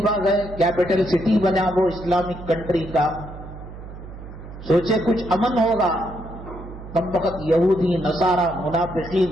گئے، کیپٹل سٹی بنا وہ اسلامک کنٹری کا. سوچے کچھ امن ہوگا. کم وقت یہودی، نصارہ،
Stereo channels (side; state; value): right; noise; hum, 14 dB below the sound